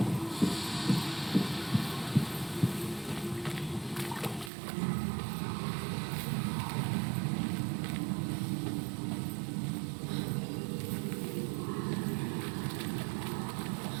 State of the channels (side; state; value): left; drops out; at 4.5 s